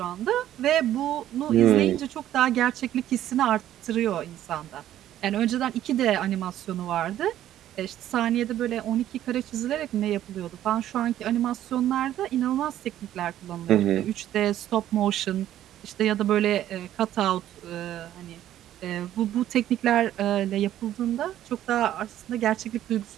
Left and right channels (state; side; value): quieter; left; 12.3 dB